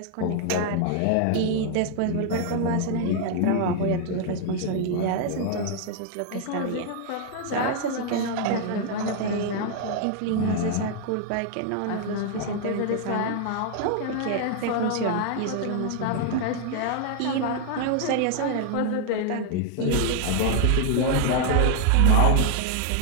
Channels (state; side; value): different; both; correlation 0.00